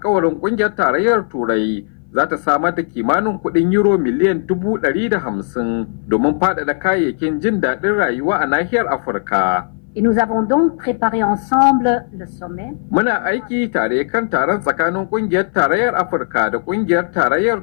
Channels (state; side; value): silent; right; 60 dB below the other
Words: kungiyar tarayyar Turai za ta samar da kimanin kudin euro miliyan 150 domin faɗaɗa kayayyakin jin daɗin rayuwa a nahiyar Afirka. Et nous avons donc préparé ensemble le sommet. Muna aiki tare kan taron tsakanin kungiyar tarayyar Afirka da kungiyar tarayyar